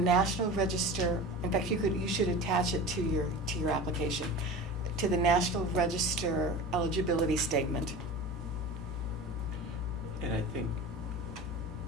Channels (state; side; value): normal; both; correlation 0.32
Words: Register. In fact, you should attach it to your application, to the National Register eligibility statement. And I think,